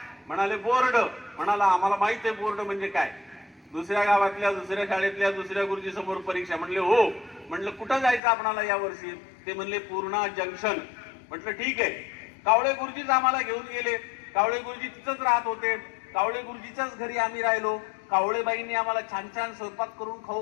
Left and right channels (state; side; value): drops out; right; at 8.2 s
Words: म्हणाले बोर्ड. म्हणाला आम्हाला माहित आहे बोर्ड म्हणजे काय. दुसऱ्या गावातल्या दुसऱ्या शाळेतल्या दुसऱ्या गुरुजी समोर परीक्षा. म्हणले हो. म्हटलं कुठं जायचं आपणाला या वर्षी? ते म्हणले पूर्णा जंक्शन. म्हटलं ठीक आहे. कावळे गुरुजीच आम्हाला घेऊन गेले. कावळे गुरुजी तिथंच राहत होते. कावळे गुरुजीच्याच घरी आम्ही राहिलो. कावळेबाईंनी आम्हाला छान छान स्वयंपाक करून